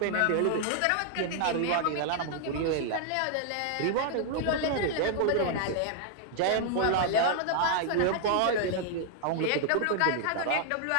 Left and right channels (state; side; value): different; both; correlation -0.01